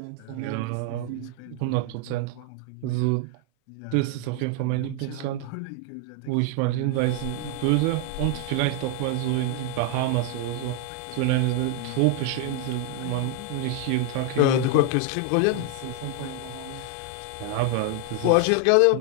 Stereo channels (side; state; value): both; different; correlation 0.00